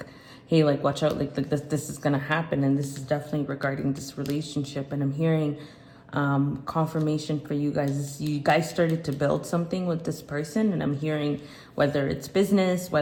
hey, like watch out, like this is gonna happen, and this is definitely regarding this relationship. And I'm hearing confirmation for you guys. You guys started to build something with this person, and I'm hearing whether it's business,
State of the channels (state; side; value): identical; both; correlation 1.00